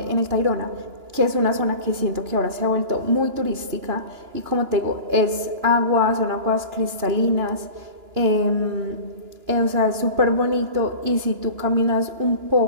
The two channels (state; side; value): late; left; 2.9 ms